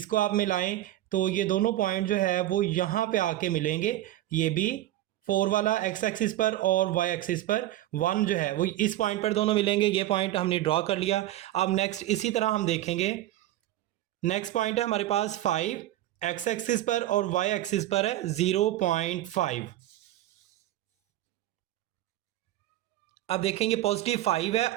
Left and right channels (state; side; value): quieter; left; 14.4 dB